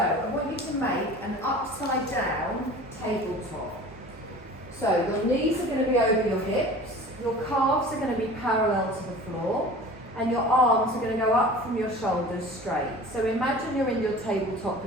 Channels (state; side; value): normal; both; correlation 0.41